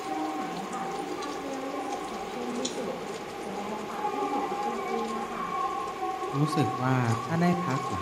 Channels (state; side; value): identical; both; correlation 1.00